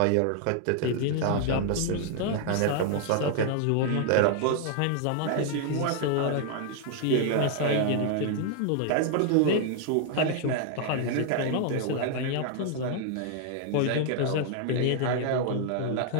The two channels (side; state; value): both; different; correlation 0.00